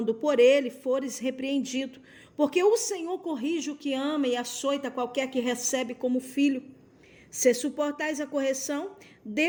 por ele fores repreendido, porque o Senhor corrige o que ama e açoita qualquer que recebe como filho. Se suportais a correção,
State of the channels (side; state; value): both; identical; correlation 1.00